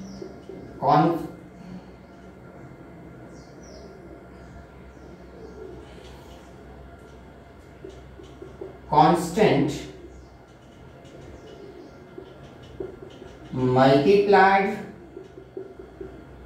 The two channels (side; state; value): both; identical; correlation 1.00